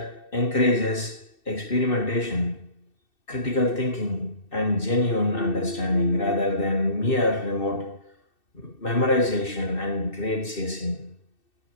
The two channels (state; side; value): late; right; 2.6 ms